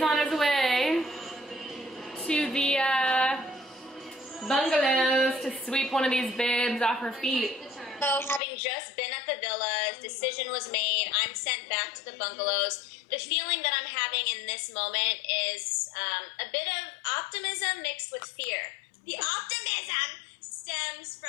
on his way to the bungalows to sweep one of these babes off her feet. So having just been at the villas, decision was made, I'm sent back to the bungalows. The feeling that I'm having in this moment is a bit of optimism mixed with fear. The optimism stems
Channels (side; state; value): right; drops out; at 8.4 s